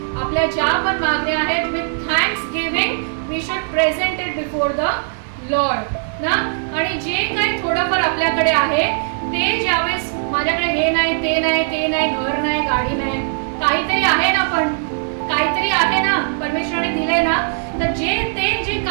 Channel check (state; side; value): silent; left; digital silence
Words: आपल्या ज्या पण मागण्या आहेत with thanksgiving we should present it before the Lord ना. आणि जे काही थोडंफार आपल्याकडे आहे ते ज्यावेळेस माझ्याकडे हे नाही, ते नाही, ते नाही, घर नाही, गाडी नाही, काहीतरी आहे ना, पण काहीतरी आहे ना, परमेश्वराने दिलंय ना. तर जे